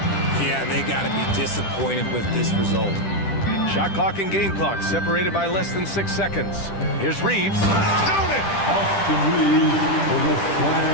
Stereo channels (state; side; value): late; right; 10 ms